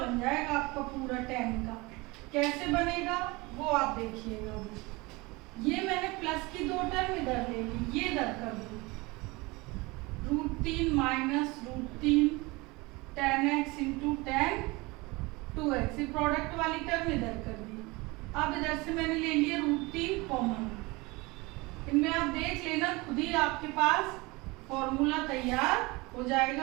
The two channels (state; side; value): quieter; left; 24.1 dB